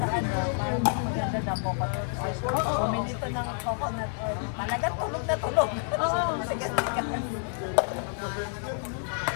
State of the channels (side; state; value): right; silent; 59 dB below the other